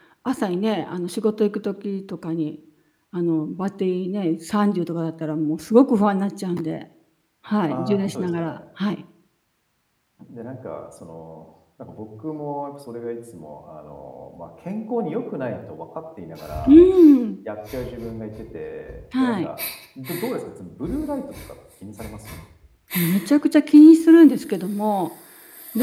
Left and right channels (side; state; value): both; identical; correlation 1.00